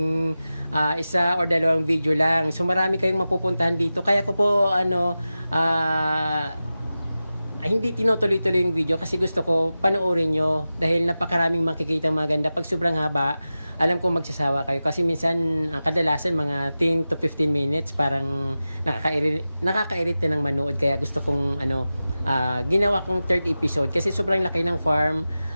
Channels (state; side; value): inverted; both; correlation -0.94